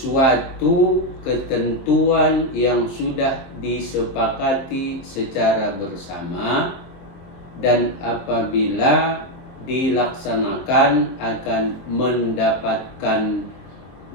ketentuan yang sudah disepakati secara bersama dan apabila dilaksanakan akan mendapatkan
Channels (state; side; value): late; right; 23 ms